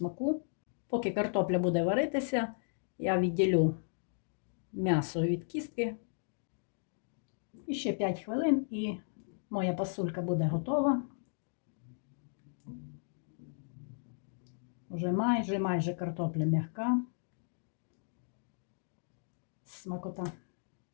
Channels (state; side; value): silent; right; digital silence